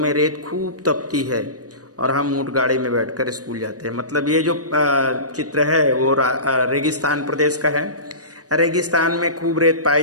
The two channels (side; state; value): left; late; 0.67 ms